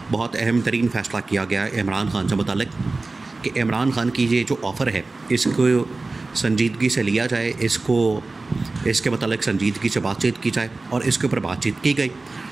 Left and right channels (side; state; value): left; quieter; 3.5 dB